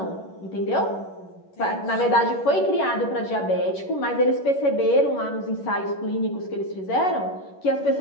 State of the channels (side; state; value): right; late; 11 ms